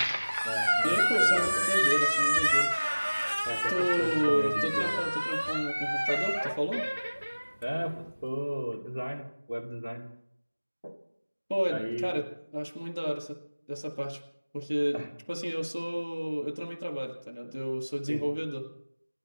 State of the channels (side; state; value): both; inverted; correlation -1.00